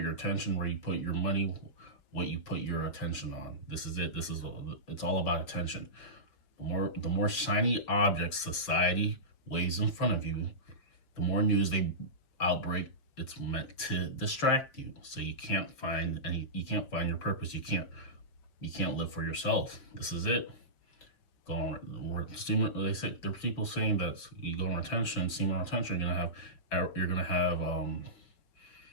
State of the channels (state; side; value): late; right; 6.0 ms